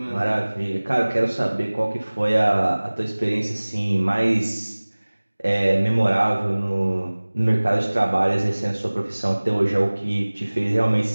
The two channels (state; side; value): inverted; both; correlation -1.00